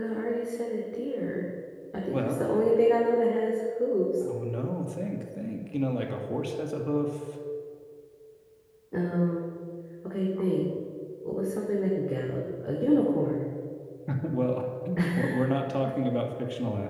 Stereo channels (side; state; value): both; identical; correlation 1.00